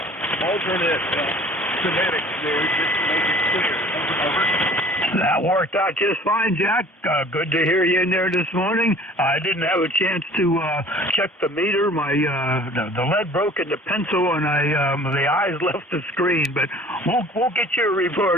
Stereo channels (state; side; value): normal; both; correlation 0.49